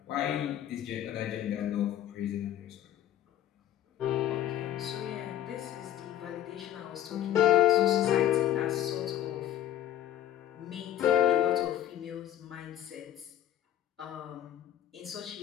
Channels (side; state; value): right; quieter; 11.7 dB